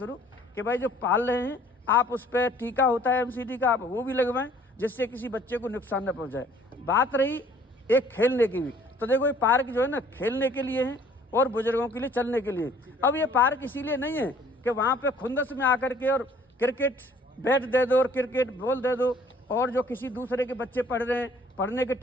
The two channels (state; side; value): normal; both; correlation 0.57